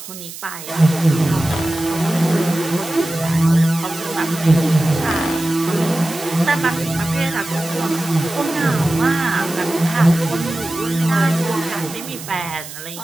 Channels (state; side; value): noise; right; hiss, 13 dB below the sound